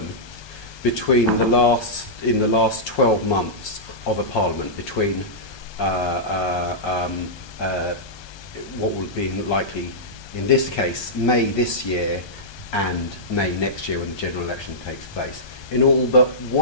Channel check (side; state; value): right; late; 1.2 ms